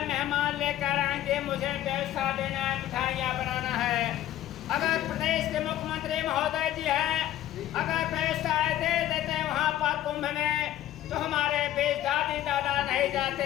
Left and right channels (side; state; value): right; quieter; 12.8 dB